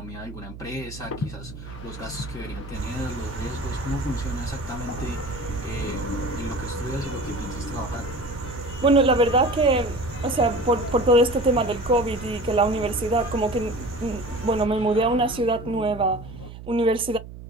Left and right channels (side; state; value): right; noise; hum, 13 dB below the sound